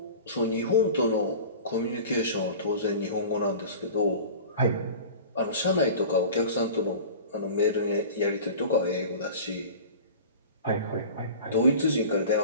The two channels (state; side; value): inverted; both; correlation -0.38